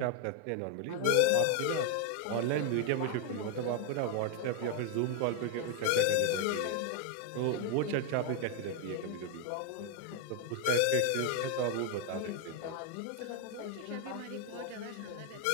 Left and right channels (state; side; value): different; both; correlation 0.01